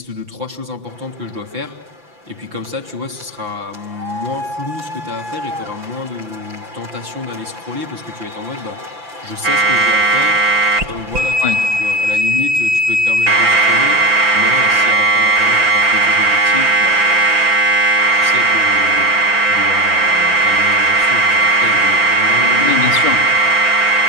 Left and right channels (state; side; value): late; left; 5.9 ms